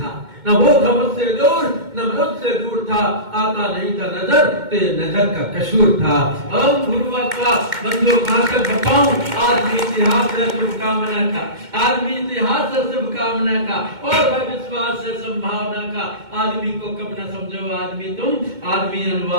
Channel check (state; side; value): late; left; 2.2 ms